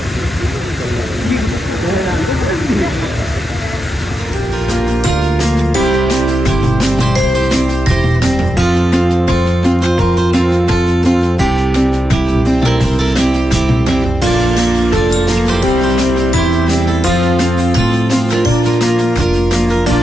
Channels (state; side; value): normal; both; correlation 0.87